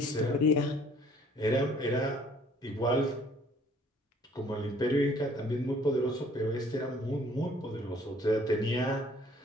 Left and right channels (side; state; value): both; normal; correlation 0.58